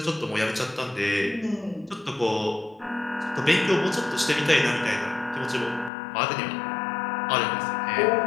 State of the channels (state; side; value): drops out; right; at 5.9 s